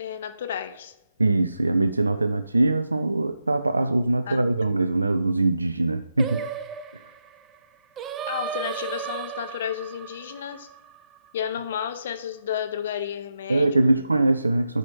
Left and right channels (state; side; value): inverted; both; correlation -0.85